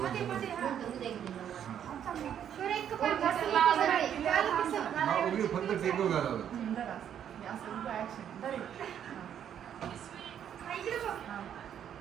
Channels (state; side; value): quieter; left; 9.4 dB